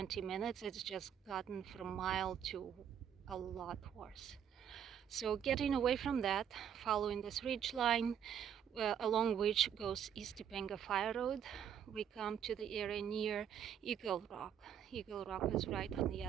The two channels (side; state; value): left; quieter; 8.8 dB